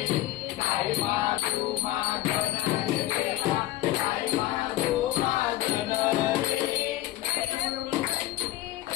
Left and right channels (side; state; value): right; quieter; 15.0 dB